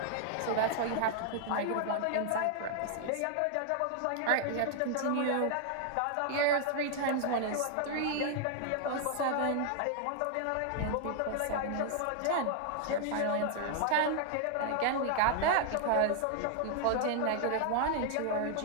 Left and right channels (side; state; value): both; different; correlation 0.00